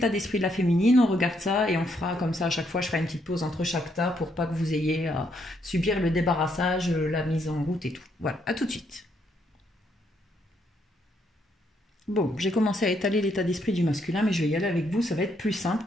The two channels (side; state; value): both; normal; correlation 0.74